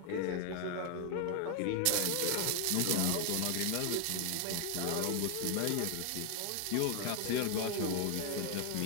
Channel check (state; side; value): different; both; correlation 0.00